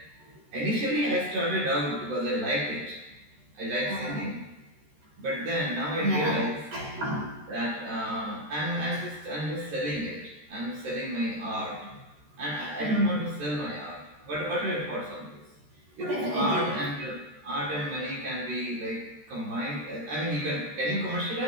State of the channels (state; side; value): late; left; 13 ms